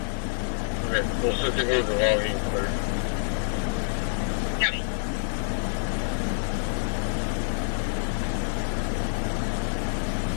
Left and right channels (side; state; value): right; silent; digital silence